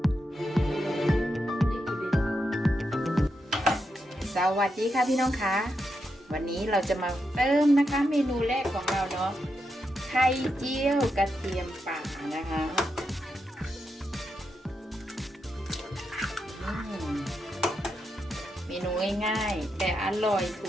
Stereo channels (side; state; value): both; normal; correlation 0.85